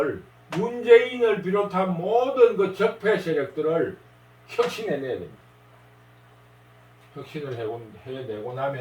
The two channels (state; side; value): identical; both; correlation 1.00